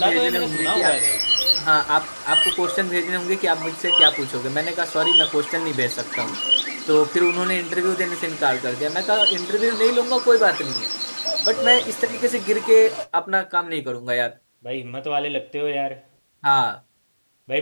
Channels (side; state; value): both; inverted; correlation -1.00